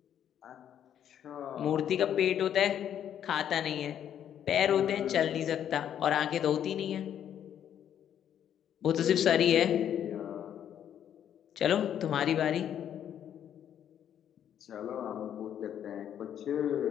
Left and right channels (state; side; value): quieter; right; 9.8 dB